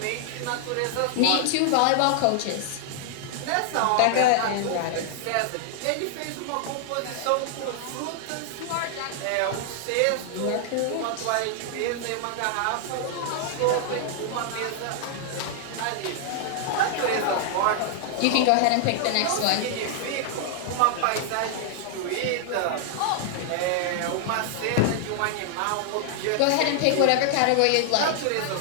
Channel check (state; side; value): different; both; correlation 0.00